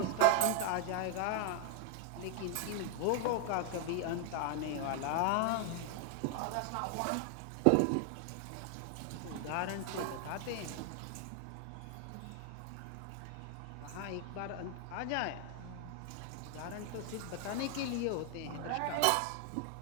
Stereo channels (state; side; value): different; both; correlation 0.00